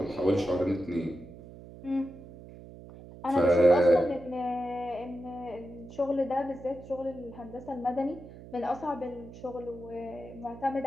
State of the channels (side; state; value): right; noise; hum, 16 dB below the sound